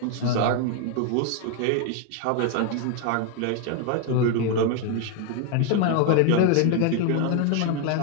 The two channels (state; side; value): different; both; correlation 0.01